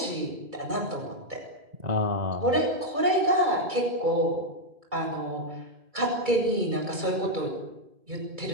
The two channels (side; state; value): left; late; 2.3 ms